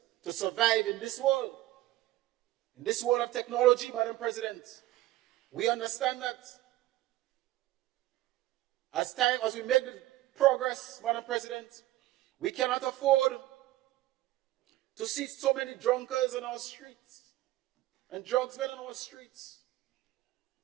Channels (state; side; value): quieter; left; 16.0 dB